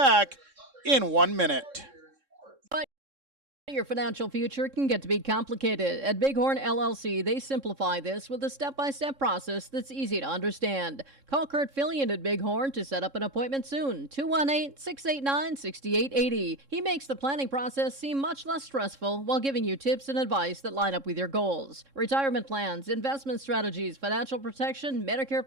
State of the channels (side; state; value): left; late; 3.7 ms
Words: in 1 minute. Your financial future can get to be complicated. At Bighorn LLC, they simplify this with a step-by-step process that's easy to understand. Call Kurt Fillion at Bighorn to set up an appointment soon. 218-689-6880. He makes the planning process seem much less stressful while giving you tips and advice that line up with your goals. Retirement plans, investment strategies, financial protection, Medicare